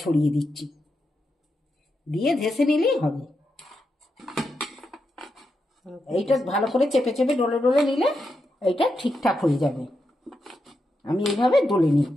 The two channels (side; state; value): both; normal; correlation 0.86